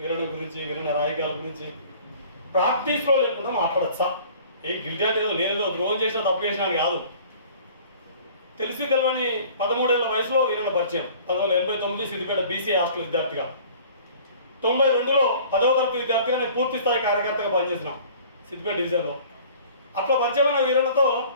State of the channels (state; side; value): inverted; both; correlation -0.49